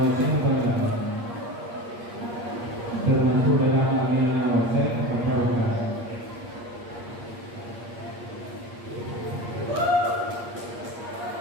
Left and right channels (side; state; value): left; late; 8.5 ms